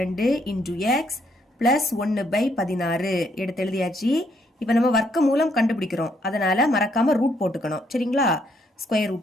into X plus 1/16 எடுத்து எழுதியாச்சு. இப்போ நம்ம வர்க்க மூலம் கண்டுபிடிக்கிறோம், அதனால மறக்காம ரூட் போட்டுக்கணும். சரிங்களா? Square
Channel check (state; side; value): normal; both; correlation 0.71